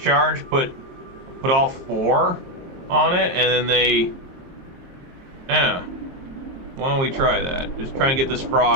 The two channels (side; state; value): left; late; 22 ms